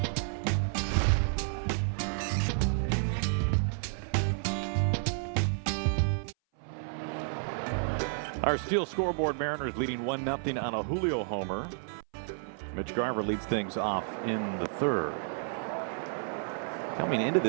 Our Steel scoreboard, Mariners leading 1-0 on a Julio homer. Mitch Garver leads things off in the third. Coming into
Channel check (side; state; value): left; silent; 57 dB below the other